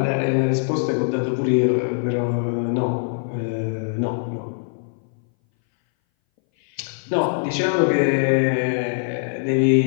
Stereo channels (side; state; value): right; silent; 60 dB below the other